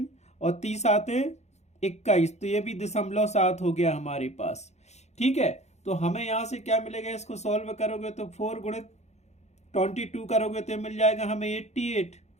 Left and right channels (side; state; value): right; late; 0.32 ms